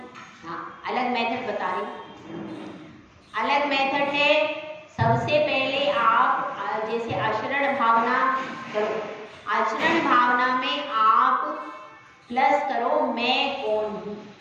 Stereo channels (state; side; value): identical; both; correlation 1.00